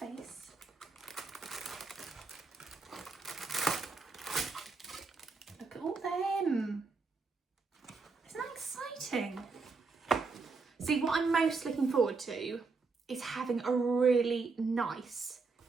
Look at all them. Isn't that exciting? See, what I'm most looking forward to is having a really nice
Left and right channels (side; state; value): left; quieter; 4.3 dB